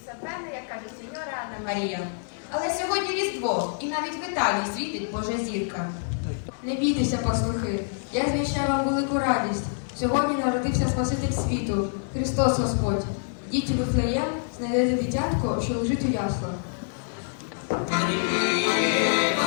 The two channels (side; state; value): right; silent; digital silence